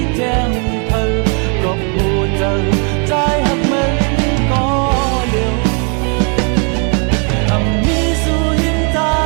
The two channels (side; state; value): left; quieter; 38.1 dB